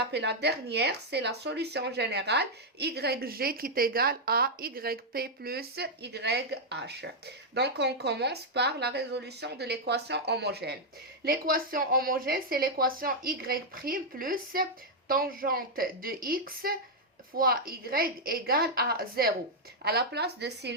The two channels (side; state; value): both; normal; correlation -0.03